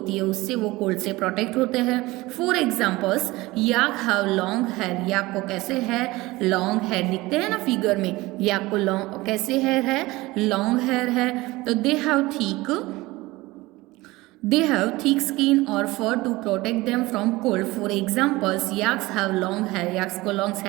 है, उससे वो कोल्ड से प्रोटेक्ट होते हैं। For examples, yak have long hair, yak को कैसे है, लॉन्ग हेयर दिखते हैं ना फिगर में, याक को लॉन्ग कैसे हेयर है, लॉन्ग हेयर है। तो दे हैव थिक स्किन और fur to protect them from cold. For examples, yaks have long hair, yaks को लॉन्ग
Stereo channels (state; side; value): quieter; left; 20.3 dB